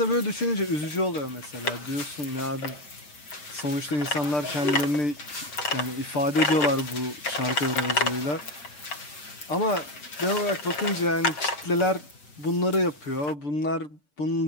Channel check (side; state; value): right; late; 6.8 ms